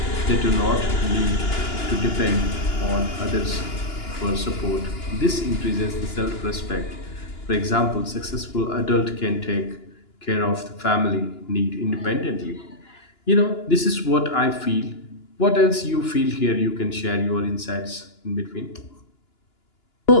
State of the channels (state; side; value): late; right; 2.9 ms